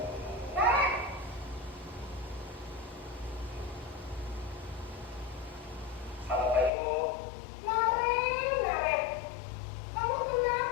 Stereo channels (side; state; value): right; drops out; at 6.7 s